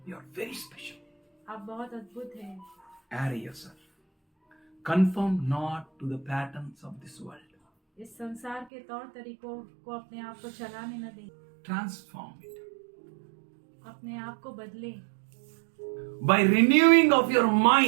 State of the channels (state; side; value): drops out; left; at 8.7 s